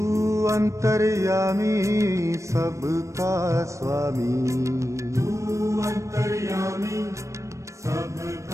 अंतर्यामी सबका स्वामी, तू अंतर्यामी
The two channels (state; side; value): late; left; 0.15 ms